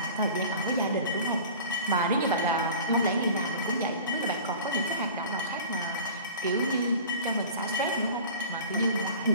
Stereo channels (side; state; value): both; inverted; correlation -0.40